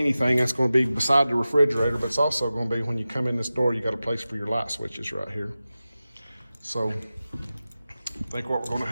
that's going to be beside the refrigerator, but it's also going to be when you come in this door, you got a place for your light switches right here. So I think what we're going to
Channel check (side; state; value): both; inverted; correlation -0.95